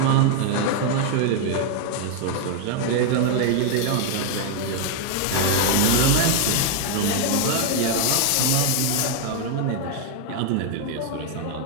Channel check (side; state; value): both; different; correlation 0.00